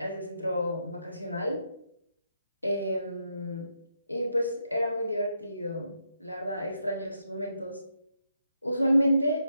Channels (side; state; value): both; inverted; correlation -0.81